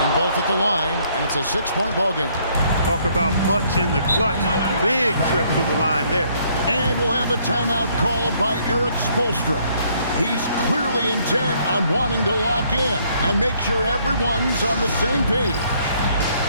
both at the line, and it's a 6-point ball game. Talk about much in the clutch. Big trip to the line there. And we'll have a timeout called by Erik Spoelstra. He's clearly intent on wanting to lock in and make sure everyone's on the same page.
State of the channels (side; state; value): both; inverted; correlation -0.66